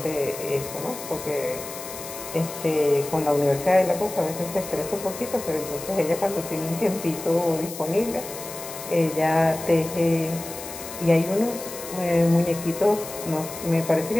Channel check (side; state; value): left; noise; hiss, 11 dB below the sound